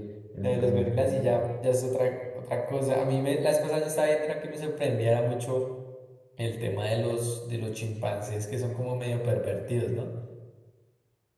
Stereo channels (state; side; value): identical; both; correlation 1.00